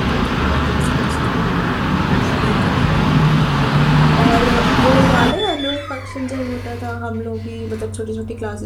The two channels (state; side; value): identical; both; correlation 1.00